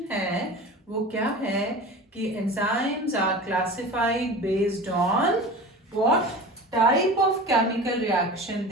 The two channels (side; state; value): both; normal; correlation 0.35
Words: है वो क्या है कि enzymes are classified based on what type of chemical reaction